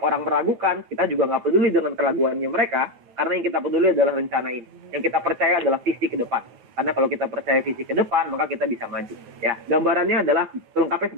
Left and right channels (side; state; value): left; late; 9.1 ms